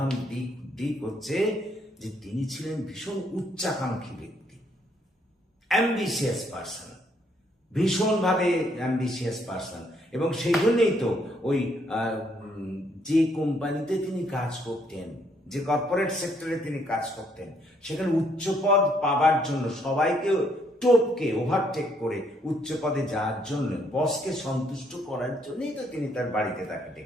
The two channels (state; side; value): normal; both; correlation 0.70